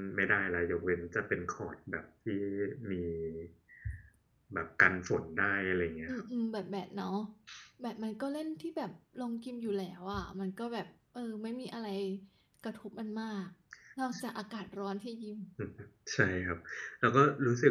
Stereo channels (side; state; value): both; identical; correlation 1.00